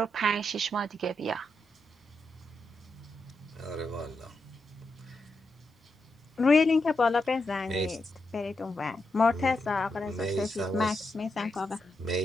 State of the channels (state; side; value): normal; both; correlation 0.85